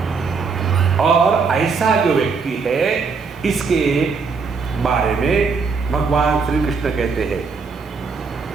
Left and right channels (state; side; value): quieter; left; 5.0 dB